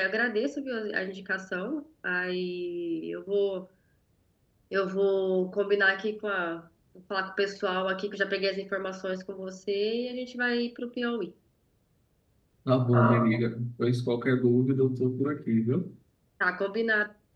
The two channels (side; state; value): both; identical; correlation 1.00